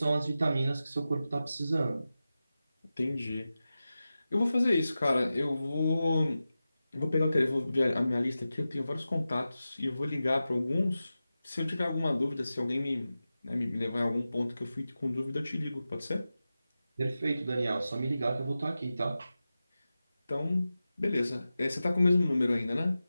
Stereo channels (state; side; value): inverted; both; correlation -0.94